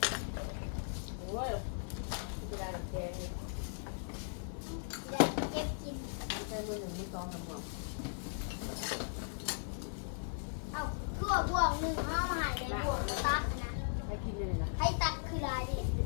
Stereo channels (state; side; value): silent; right; 53 dB below the other